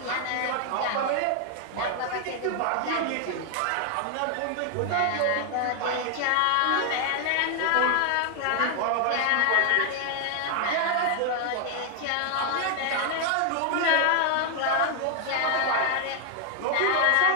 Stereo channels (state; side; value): different; both; correlation 0.00